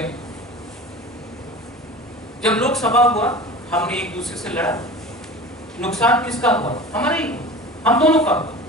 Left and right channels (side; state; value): both; normal; correlation 0.36